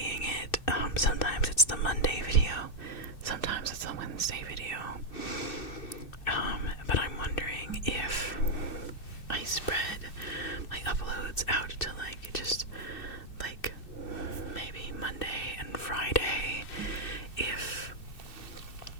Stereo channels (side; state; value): right; late; 2.6 ms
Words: it. Sometimes it's the Monday video, sometimes it's the Wednesday video. But I'm wondering if I spread my uploads out to like just like maybe Monday and Friday, if